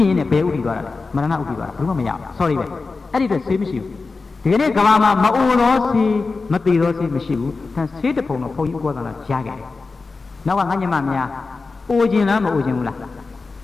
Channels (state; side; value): quieter; right; 4.0 dB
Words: နဲ့ဘယ်ဥတည်သွားတာလဲမရဏဥတည်သွားတာဘယ်မှမရဘူး sorry ပဲအဲ့ဒီအတွက်ဆေးမရှိဘူးဒီကနေ့ကဘာမှာမအိုတော့ဆေးမတည်တော့ဆေးမရှိဘူးဒါဆေးတပုံတော့ဘုန်းကြီးဥပဒနာကြားခဲ့တယ်နောက်ကငါညမများအိုခြင်းလားမအိုခြင်းဘူးလား